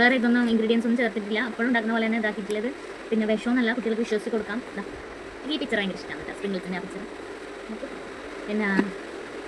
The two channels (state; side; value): identical; both; correlation 1.00